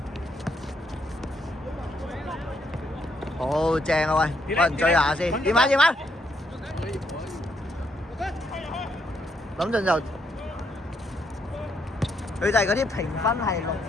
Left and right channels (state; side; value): normal; both; correlation 0.75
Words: 好。度正啊喂，揾人追下先。點啊點啊！諗陣就佢就係嗰啲評分係6，